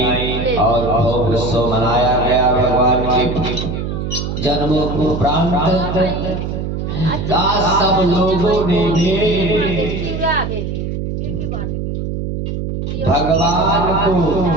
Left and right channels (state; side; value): noise; right; hum, 4 dB below the sound